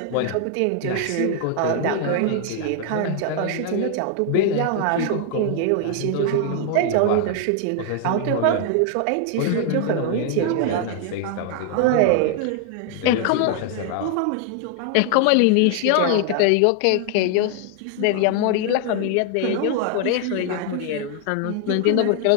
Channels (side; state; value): both; different; correlation 0.00